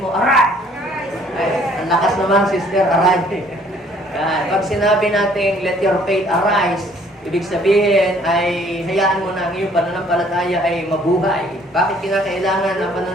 mo, arise! Ay, ang lakas naman, sister, arise. Pag sinabi natin, let your faith arise, ibig sabihin ay hayaan mo na ang iyong pananampalataya ay mabuhay. Bakit kinakailangan ang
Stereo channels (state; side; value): normal; both; correlation 0.59